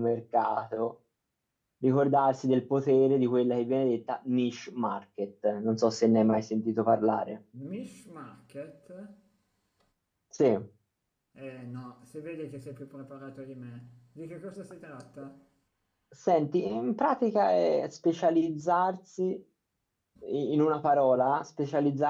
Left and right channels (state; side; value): identical; both; correlation 1.00